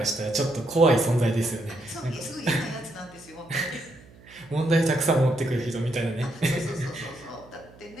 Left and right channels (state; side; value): noise; right; hum, 24 dB below the sound